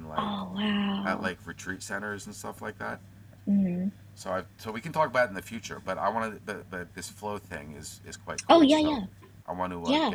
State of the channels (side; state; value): both; identical; correlation 1.00